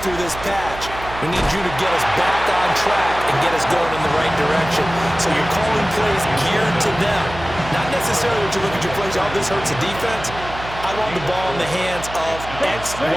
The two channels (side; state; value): right; noise; hum, 12 dB below the sound